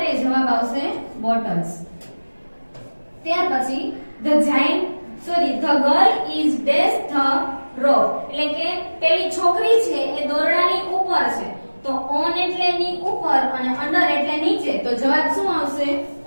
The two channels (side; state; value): both; inverted; correlation -1.00